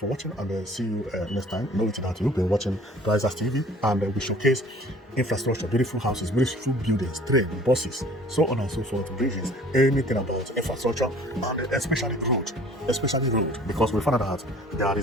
watching, and see you next time. Know it that you've been watching Prizers TV, and we showcase infrastructure, beautiful houses, beautiful buildings, train, buses, so on and so forth, bridges, anything about infrastructure, and especially road, because we found out that there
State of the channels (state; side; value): normal; both; correlation 0.51